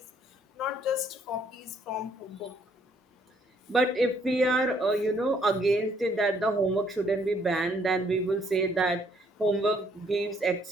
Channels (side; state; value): both; normal; correlation 0.67